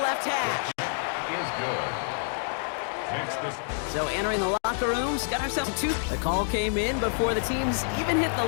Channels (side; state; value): right; silent; 60 dB below the other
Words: hash. Is good. So entering the locker rooms, got ourselves a 2. The call came in before the teams even hit the